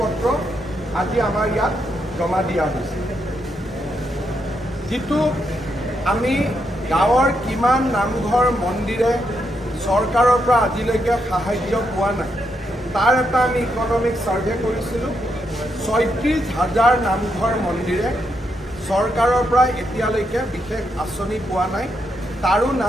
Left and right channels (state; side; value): normal; both; correlation 0.80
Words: আজি আমাৰ ইয়াত জমা দিয়া হৈছে। যিটো আমি গাঁৱৰ কিমান নামঘৰ মন্দিৰে চৰকাৰৰ পৰা আজিলৈকে সাহায্য পোৱা নাই, তাৰ এটা আমি ইকনমিক সাৰ্ভে কৰিছিলোঁ। 36,000 নামঘৰ মন্দিৰে চৰকাৰৰ পৰা এতিয়ালৈকে বিশেষ আঁচনি পোৱা নাই, তাৰো